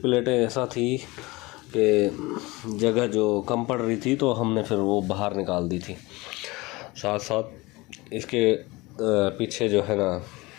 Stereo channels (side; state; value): right; quieter; 22.4 dB